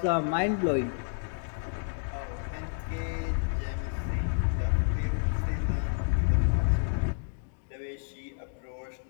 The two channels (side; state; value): right; silent; 58 dB below the other